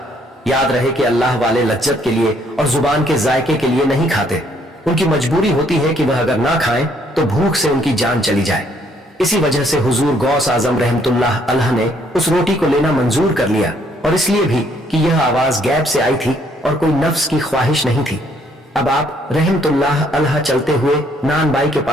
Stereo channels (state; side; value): normal; both; correlation 0.67